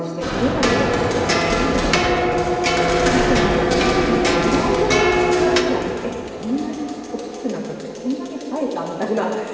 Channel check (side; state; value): both; identical; correlation 1.00